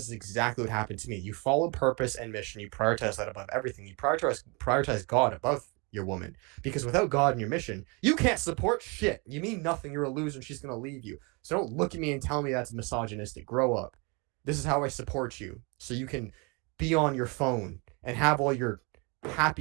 is exactly what happened to me. You follow purpose and mission. You prioritize that above everything. You prioritize God above your woman. Because without God and your mission, you can't support shit. You mean nothing. You're a loser and she's going to leave you. So don't look at me and tell me that's misogynistic. Grow up. This is how I support you, so you can be on your phone and have all your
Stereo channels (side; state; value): left; quieter; 30.3 dB